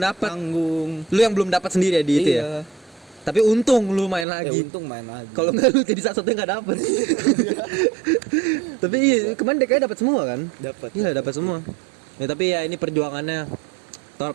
Tanggung. Lu yang belum dapat sendiri ya di itu ya. Iya. Tapi untung lu main Ya lagi. untung main lagi. Kalau nggak lu jadi satu-satunya nggak dapet. Tapi iya kemarin DKI dapat semua kan? Dapat. Iya dapat semua. Ya tapi ya ini perjuangannya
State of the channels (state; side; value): drops out; left; at 4.2 s